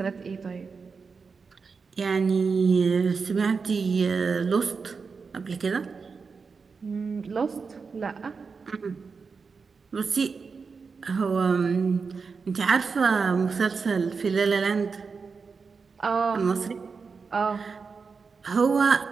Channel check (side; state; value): left; quieter; 5.0 dB